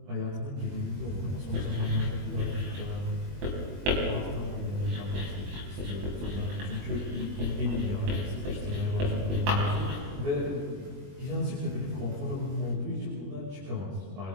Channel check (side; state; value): left; late; 21 ms